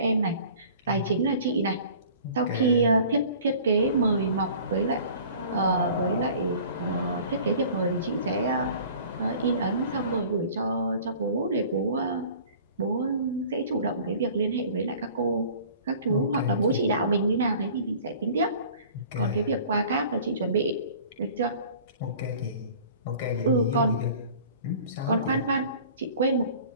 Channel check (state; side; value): inverted; both; correlation -0.47